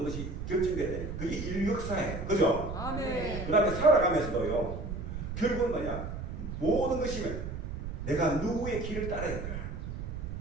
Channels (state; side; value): noise; right; rumble, 6 dB below the sound